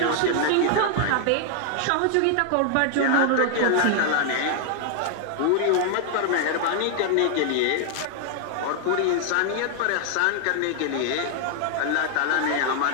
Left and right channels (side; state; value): both; different; correlation 0.00